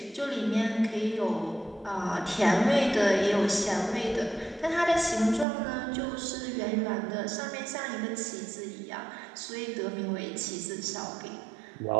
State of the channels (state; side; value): drops out; left; at 5.5 s